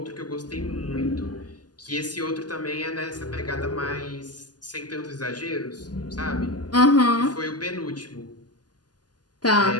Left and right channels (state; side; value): late; right; 0.70 ms